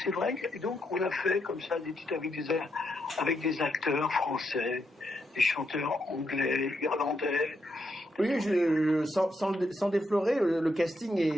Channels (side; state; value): both; normal; correlation 0.80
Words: vrai, et donc on a fait comme ça des titres avec des acteurs français, des chanteurs anglais, irlandais. Oui, sans déflorer, le casting